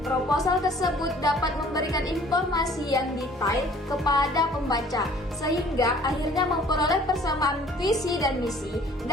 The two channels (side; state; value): both; normal; correlation 0.53